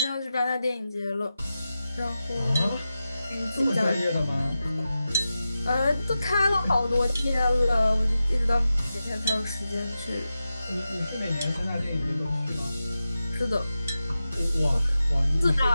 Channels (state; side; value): inverted; both; correlation -0.92